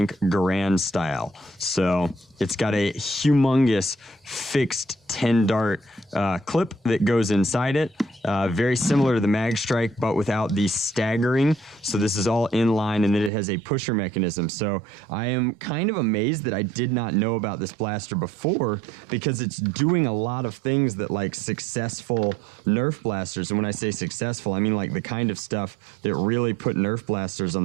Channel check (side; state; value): left; drops out; at 13.3 s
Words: Garand style. So it's got a humongous fixed 10-dart clip that goes inside it. Very similar to the Mag Strike, but without the staggering. So this is all in line, and then it has a pusher mechanism. So I am kind of amazed that I did not know about this blaster before, because it's doing a lot of things that like successful Nerf blasters, and when I say successful, I mean like the kind of stuff that really put Nerf blasters